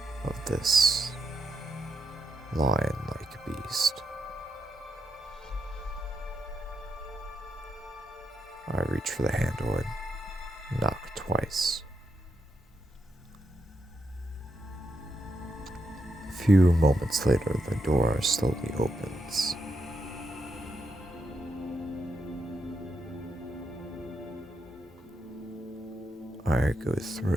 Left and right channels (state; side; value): normal; both; correlation 0.82